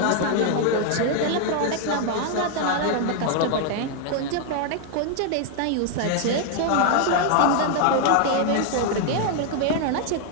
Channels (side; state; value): both; different; correlation 0.00